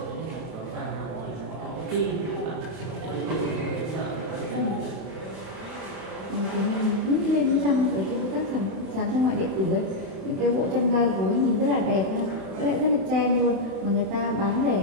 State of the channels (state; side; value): late; left; 31 ms